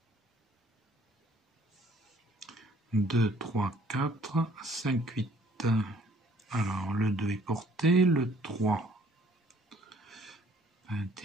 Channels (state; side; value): normal; both; correlation 0.59